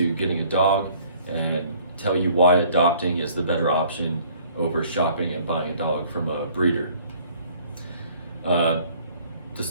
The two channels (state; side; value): inverted; both; correlation -0.56